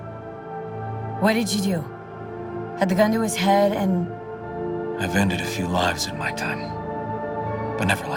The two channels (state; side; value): identical; both; correlation 1.00